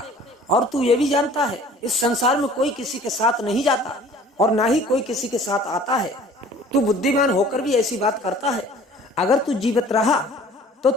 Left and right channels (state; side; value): normal; both; correlation 0.50